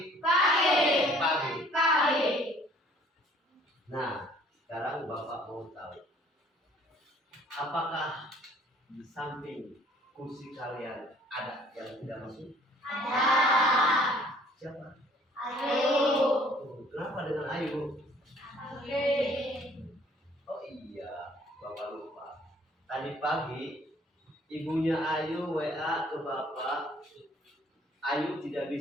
pagi, Pagi. pagi. Nah, sekarang Bapak mau tahu, apakah di samping kursi kalian ada yang tidak masuk? Ada. Siapa? Ayu. Kenapa dengan Ayu? Oke. Oh iya, Bapak lupa. Tadi pagi ibunya Ayu WA ke Bapak. Ayu tidak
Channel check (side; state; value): both; normal; correlation 0.57